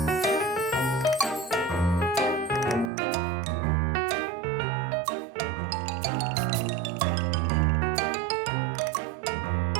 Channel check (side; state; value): left; drops out; at 2.9 s